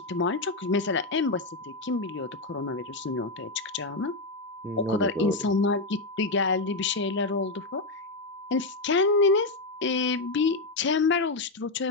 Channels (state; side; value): quieter; right; 3.2 dB